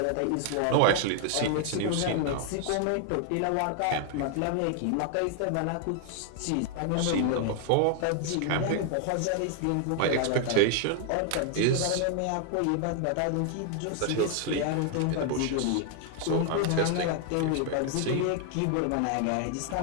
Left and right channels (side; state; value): both; different; correlation 0.00